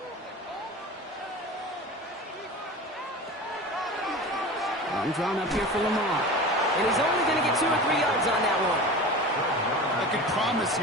Run drawn up here for Lamar. And he's only going to get 2 or 3 yards on that one. I can promise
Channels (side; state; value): both; normal; correlation 0.34